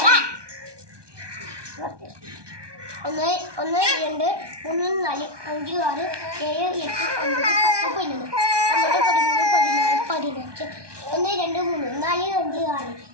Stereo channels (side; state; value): left; late; 1.2 ms